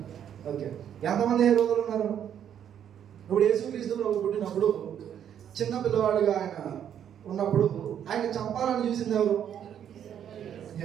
ఓకే, ఎంతమంది హేరోదులు ఉన్నారు? ఇప్పుడు యేసుక్రీస్తు ప్రభు పుట్టినప్పుడు చిన్న పిల్లవాడిగా ఆయన ఉన్నప్పుడు ఆయన చంపాలని చూసింది ఎవరు?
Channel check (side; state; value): left; quieter; 9.4 dB